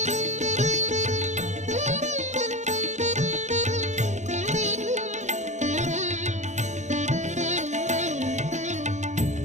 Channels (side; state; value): left; late; 0.34 ms